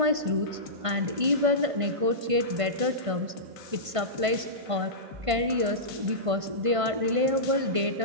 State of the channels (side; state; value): left; late; 1.5 ms